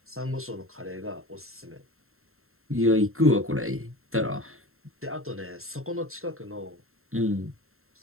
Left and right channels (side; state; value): left; late; 0.62 ms